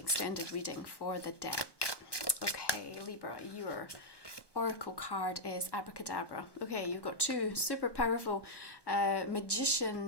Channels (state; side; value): late; right; 1.2 ms